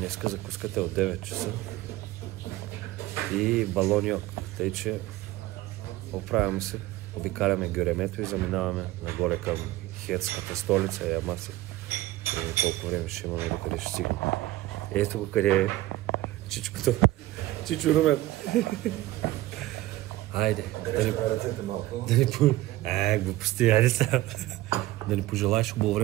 закуската е от 9 часа и балоньок, тъй че оправяме се, обикаляме Гюремето и заминаваме нагоре към хетската столица Ямаси. Колко време ще имаме, докъде ще стигнем. Ето го къде е чичкото. Чичо Румен. Айде, глупости, айде сега. Да ни пожелаеш хубаво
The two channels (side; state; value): left; quieter; 16.7 dB